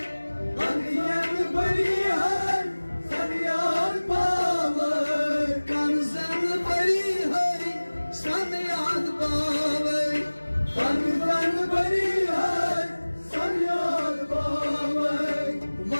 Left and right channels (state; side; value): inverted; both; correlation -1.00